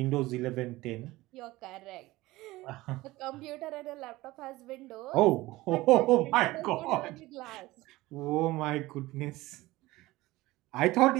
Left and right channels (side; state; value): left; quieter; 18.9 dB